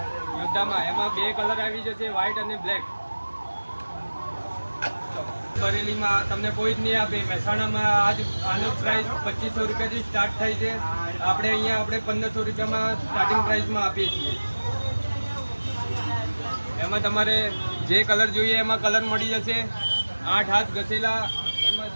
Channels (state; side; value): inverted; both; correlation -1.00